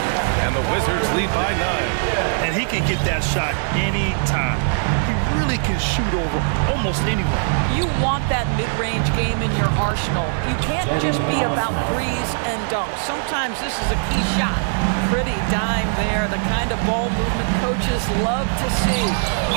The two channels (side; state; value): left; silent; digital silence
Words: And the Wizards lead by 9. And he can get that shot anytime. He really can shoot over almost anyone. You want that mid-range game in your arsenal. You can't just be about threes and dunks. Sometimes this is a key shot. Pretty dime there, the kind of ball movement coaches love to see.